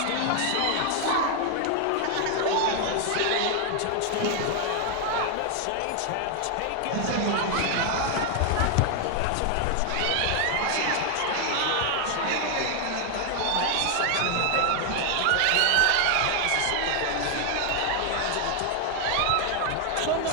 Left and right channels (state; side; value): different; both; correlation 0.00